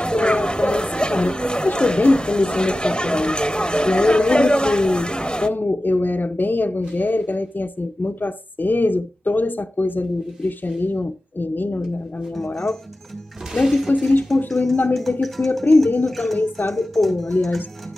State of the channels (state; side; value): normal; both; correlation 0.95